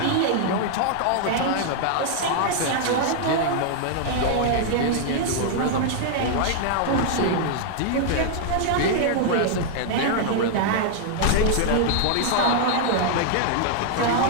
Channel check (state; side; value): different; both; correlation -0.01